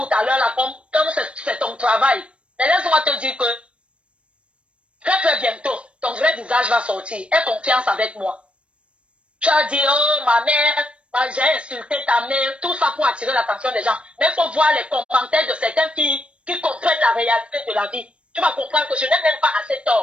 à l'heure, là, comme c'est ton travail. Mais laisse-moi te dire que très très bientôt, ton vrai visage va sortir. Aie confiance avec moi. Tu as dit, oh, ma mère, j'ai insulté ta mère, tout ça pour attirer l'attention des gens. Mais il faut voir les commentaires de certaines filles qui comprennent la réalité de la vie. Tu vas comprendre que je n'ai même pas assez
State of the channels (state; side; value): late; left; 0.059 ms